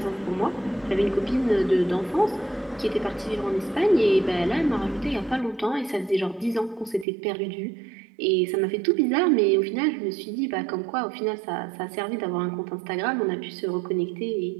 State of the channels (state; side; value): drops out; left; at 7.1 s